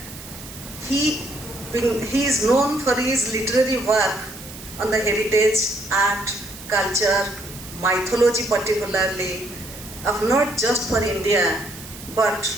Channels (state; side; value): noise; right; hiss, 15 dB below the sound